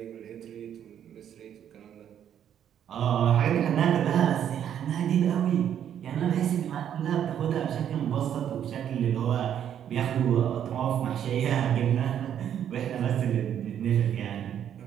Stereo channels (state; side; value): quieter; left; 9.6 dB